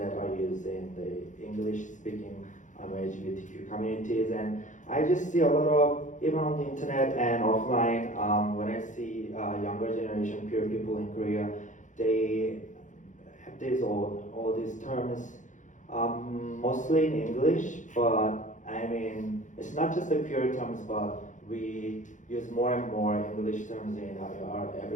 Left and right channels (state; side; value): late; right; 0.36 ms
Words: are used in the English-speaking LGBTQ communities. And I just see a lot of, even on the internet and offline, when I see younger generation queer people in Korea, they have all these terms, mostly in English, but it's not just the queer terms, but we use more and more English terms in our